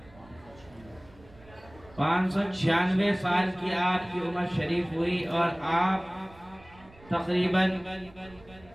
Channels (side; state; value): right; noise; rumble, 24 dB below the sound